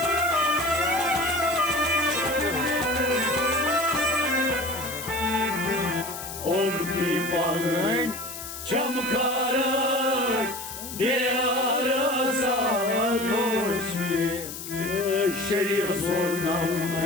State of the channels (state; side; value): noise; left; hiss, 10 dB below the sound